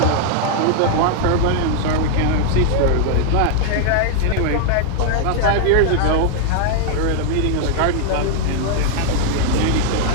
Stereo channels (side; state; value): both; different; correlation 0.00